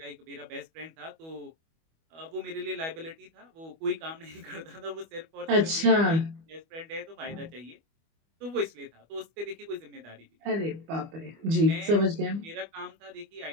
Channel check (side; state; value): left; late; 25 ms